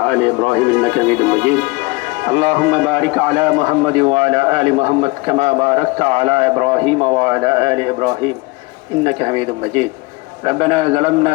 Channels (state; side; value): quieter; right; 24.6 dB